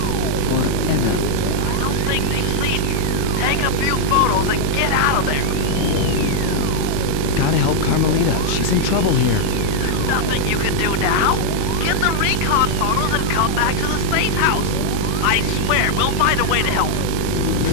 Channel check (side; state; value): both; different; correlation 0.00